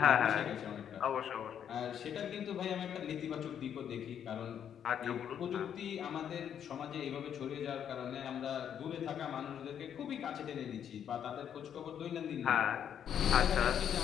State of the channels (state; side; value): quieter; right; 8.9 dB